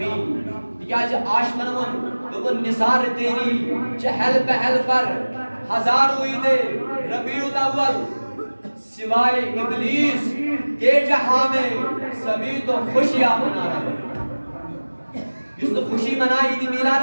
تکیاز عاشقن ون دوپن نثار تیری چہل پہل پر ہزاروں عید ربیع الاول سوائے ابلیس کے جہاں میں سبھی تو خوشیاں منا رہے جس تو خوشی منائی عید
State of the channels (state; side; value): inverted; both; correlation -1.00